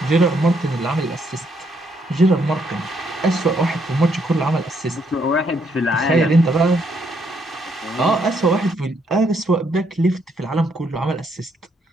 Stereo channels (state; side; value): normal; both; correlation 0.73